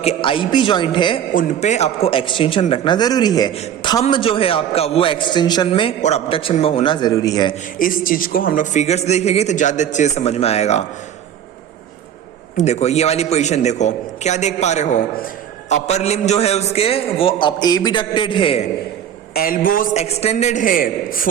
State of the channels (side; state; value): left; quieter; 9.6 dB